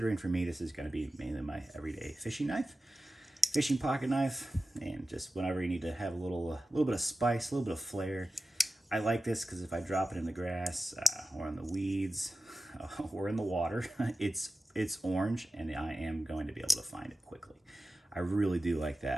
for me, this is going to be mainly my everyday fishing knife, fishing pocket knife, and just whenever you need to have a little bit of spice, a little bit of flair. I like this because if I drop it in the grass or in the weeds or in the water, it's orange and I am going to be able to find it quickly. I really do like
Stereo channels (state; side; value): normal; both; correlation 0.93